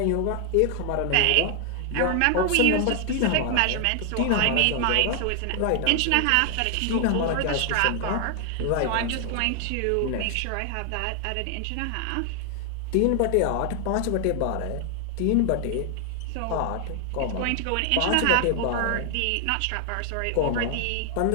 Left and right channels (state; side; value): different; both; correlation 0.00